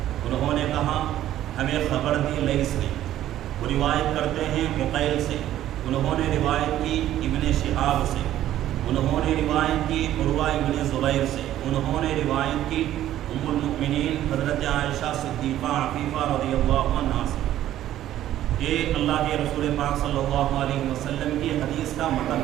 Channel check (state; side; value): quieter; left; 12.7 dB